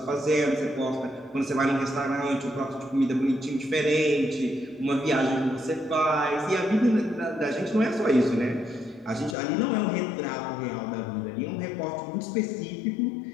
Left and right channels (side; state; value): right; drops out; at 9.3 s